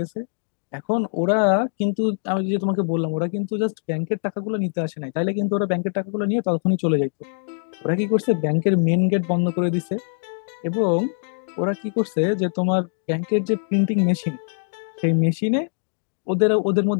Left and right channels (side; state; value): right; silent; digital silence